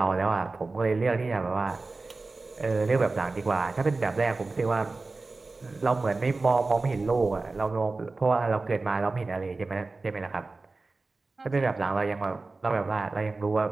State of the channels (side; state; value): left; quieter; 3.6 dB